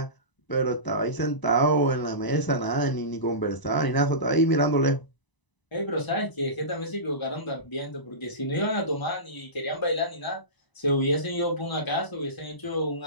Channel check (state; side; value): late; right; 1.0 ms